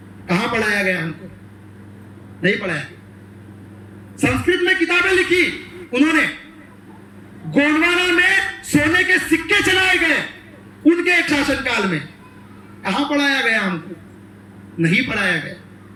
कहां पढ़ाया गया हमको? नहीं पढ़ाया। संस्कृत में किताबें लिखी उन्होंने, गोंडवाना में सोने के सिक्के चलाए गए उनके एक शासनकाल में। कहां पढ़ाया गया हमको? नहीं पढ़ाया गया।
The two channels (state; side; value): identical; both; correlation 1.00